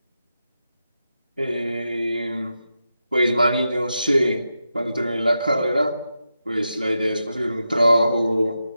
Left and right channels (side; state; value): both; inverted; correlation -0.88